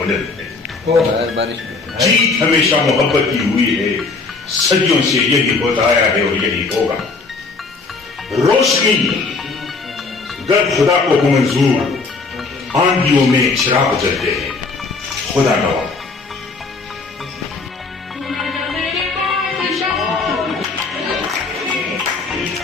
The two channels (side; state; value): right; quieter; 4.0 dB